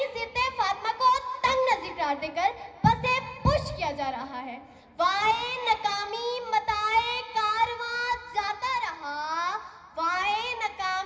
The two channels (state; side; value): identical; both; correlation 1.00